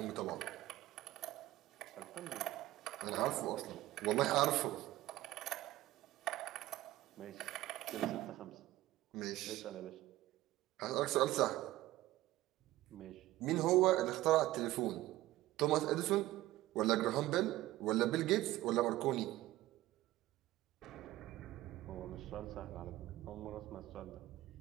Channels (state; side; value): quieter; left; 16.4 dB